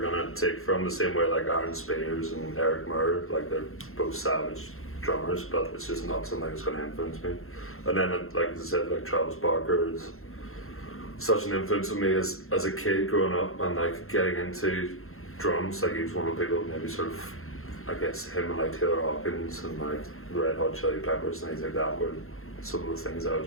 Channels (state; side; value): late; right; 0.62 ms